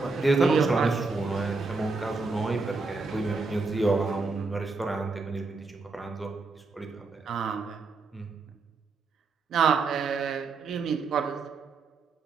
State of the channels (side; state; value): left; quieter; 4.0 dB